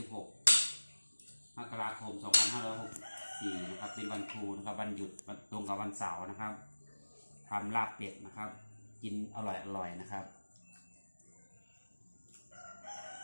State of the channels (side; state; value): both; inverted; correlation -1.00